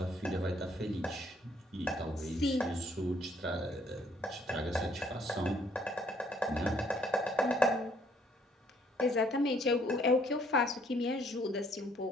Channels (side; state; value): both; normal; correlation 0.65